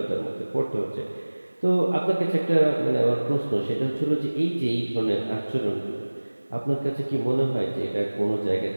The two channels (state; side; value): inverted; both; correlation -1.00